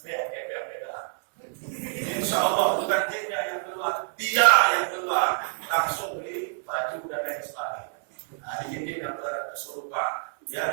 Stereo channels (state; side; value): silent; left; 60 dB below the other